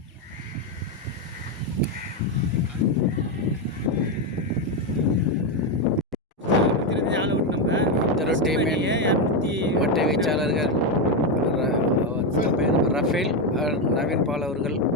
மட்டை வீச்சாளர்கள் ரஃபேல், நவீன் பால் அவர்கள்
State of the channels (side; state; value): both; normal; correlation 0.07